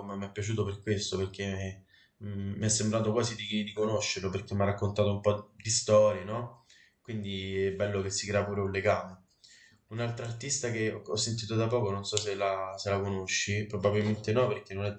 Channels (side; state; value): both; identical; correlation 1.00